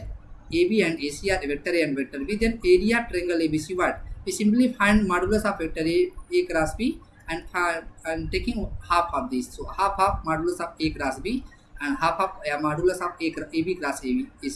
AB and AC are vector A and vector B, then area of triangle ABC what? We simply find modulus of vector A cross B and taking half of this. So half modulus of A cross B and half of modulus of AB cross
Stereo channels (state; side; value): identical; both; correlation 1.00